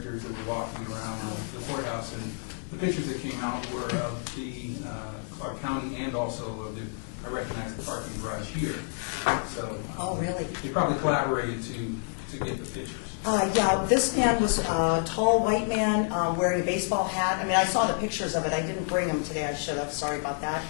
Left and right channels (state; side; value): silent; right; 59 dB below the other